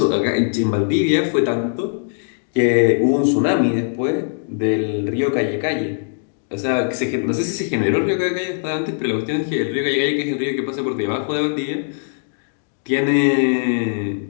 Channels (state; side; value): silent; right; digital silence